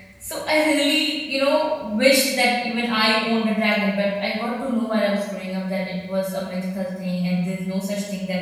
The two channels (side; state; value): both; identical; correlation 1.00